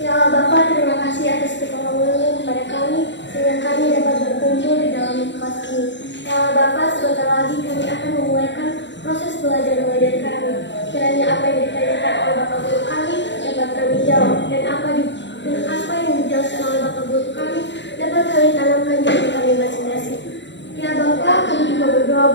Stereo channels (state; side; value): late; right; 0.52 ms